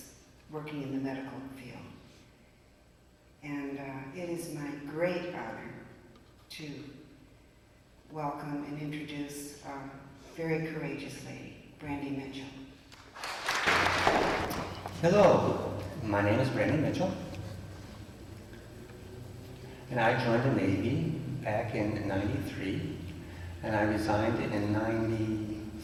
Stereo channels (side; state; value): both; identical; correlation 1.00